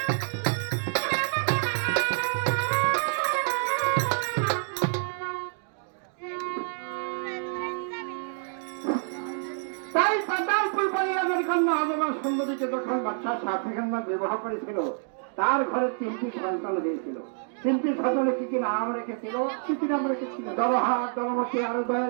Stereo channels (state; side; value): silent; left; digital silence